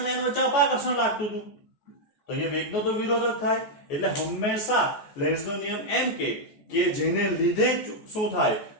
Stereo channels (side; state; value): right; late; 14 ms